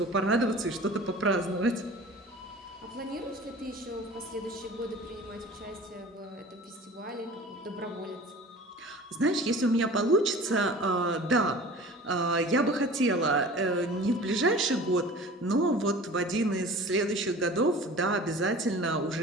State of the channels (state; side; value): normal; both; correlation 0.41